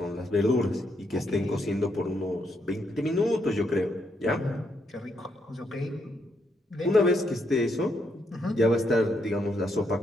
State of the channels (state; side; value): normal; both; correlation 0.77